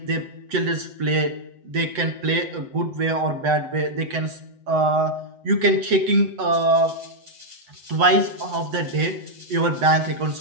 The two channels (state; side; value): late; left; 7.9 ms